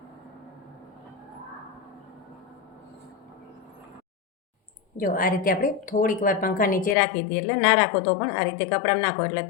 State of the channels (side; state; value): right; drops out; at 7.0 s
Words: જો આ રીતે આપણે થોડીક વાર પંખા નીચે રાખી દઈએ, એટલે ના રાખો તો પણ આ રીતે કપડામાં નાખો એટલે